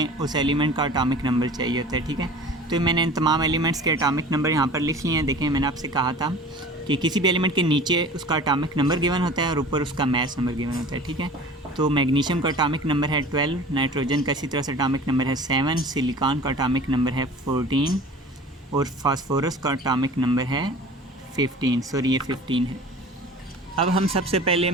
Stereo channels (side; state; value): both; normal; correlation 0.41